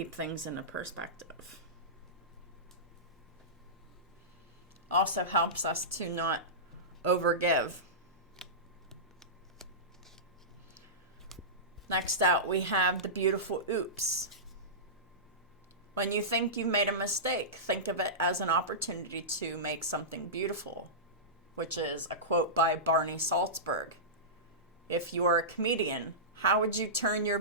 things in a perspective. Also helps us to not overgive. Next out, we have the beautiful oops. When you think you've made a mistake, think of it as an opportunity to make something beautiful, which is a quote by Barney Salzberg. If you're a comedian, how would you turn your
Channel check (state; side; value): normal; both; correlation -0.18